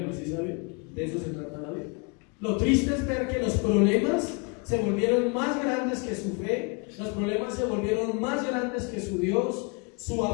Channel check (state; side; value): quieter; right; 32.5 dB